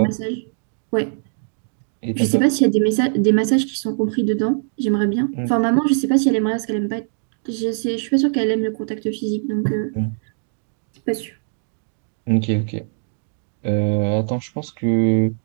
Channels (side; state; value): left; silent; digital silence